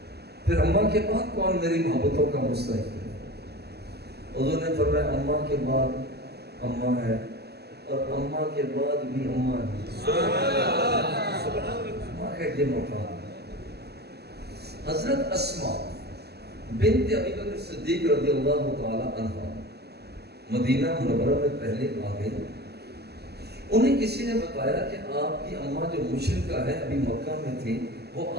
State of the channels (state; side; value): late; left; 0.47 ms